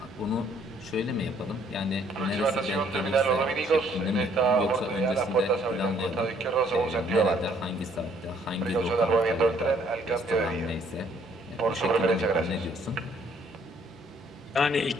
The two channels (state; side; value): normal; both; correlation 0.64